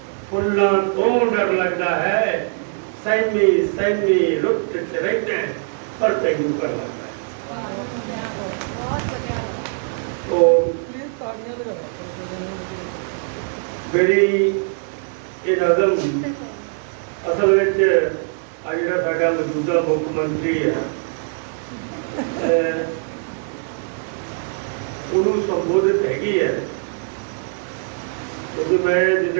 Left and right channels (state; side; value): silent; left; 61 dB below the other